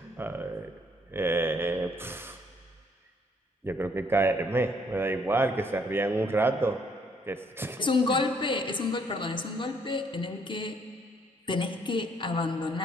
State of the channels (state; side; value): normal; both; correlation 0.67